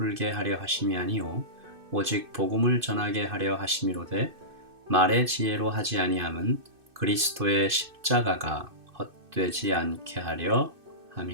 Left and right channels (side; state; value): left; late; 2.6 ms